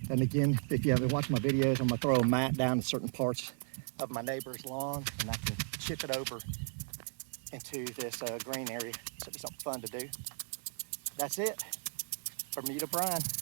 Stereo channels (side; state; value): left; silent; 54 dB below the other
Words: And again, if you haven't watched my videos, I'm gonna throw a mat down to certain parts of my neighbor's lawn, and I can chip it over into this green area. So it's something fun to do. That's it. Bermuda Brian.